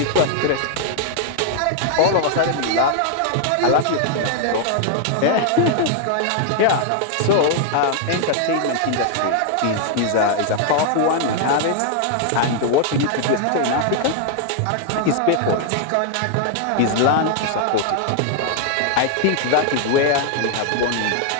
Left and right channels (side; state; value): both; different; correlation 0.00